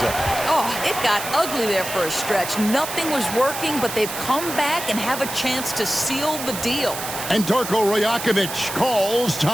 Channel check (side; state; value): right; noise; hiss, 7 dB below the sound